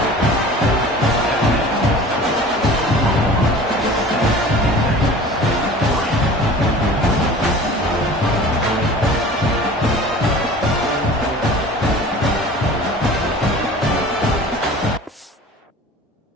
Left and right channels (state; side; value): normal; both; correlation 0.42